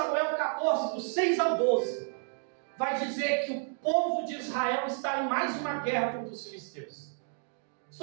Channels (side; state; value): left; silent; 57 dB below the other